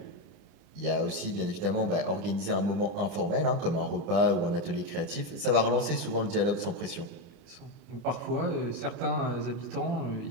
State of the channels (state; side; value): late; left; 29 ms